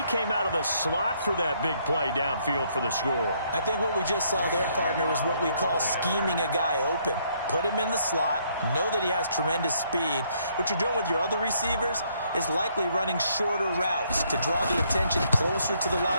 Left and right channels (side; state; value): both; inverted; correlation -0.69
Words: came out of the slot for that big play downfield for the score. I think what we just saw there, partner, was what we call scheming a guy open. Put him in the slot, know that he has tremendous speed. What you're doing with your other receivers is likely running shorter routes to draw the attention closer to the